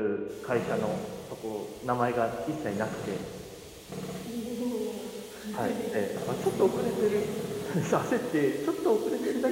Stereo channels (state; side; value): identical; both; correlation 1.00